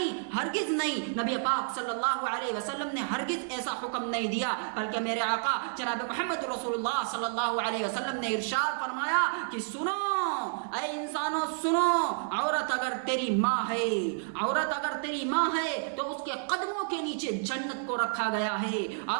ہرگز نہیں۔ نبی پاک صلی اللہ علیہ وسلم نے ہرگز ایسا حکم نہیں دیا، بلکہ میرے آقا جناب محمد رسول اللہ صلی اللہ علیہ وسلم نے ارشاد فرمایا کہ سنو اے انسانوں، سنو، عورت اگر تیری ماں ہے، عورت اگر تیری ماں ہے تو اس کے قدموں کے نیچے جنت کو رکھا گیا ہے۔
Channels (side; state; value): left; silent; digital silence